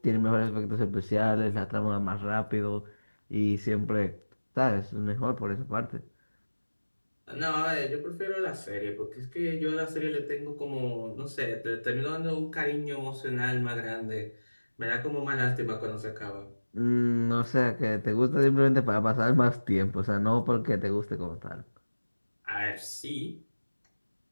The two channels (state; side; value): inverted; both; correlation -1.00